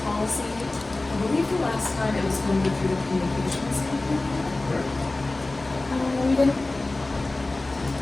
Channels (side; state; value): right; quieter; 3.0 dB